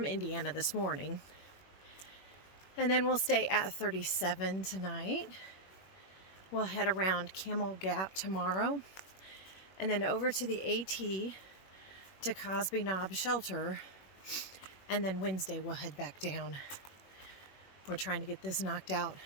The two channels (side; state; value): right; late; 21 ms